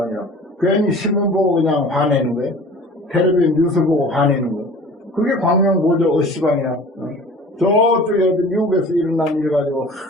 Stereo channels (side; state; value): both; normal; correlation 0.43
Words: 괜히 신문 보고 그냥 화내는 거예요. 텔레비전 뉴스 보고 화내는 거. 그게 광명보조 시방이야. 저쪽에 미국에서 일어난 일 가지고